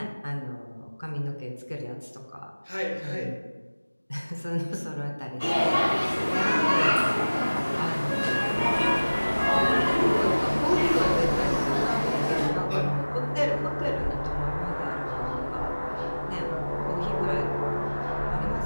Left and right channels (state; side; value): inverted; both; correlation -1.00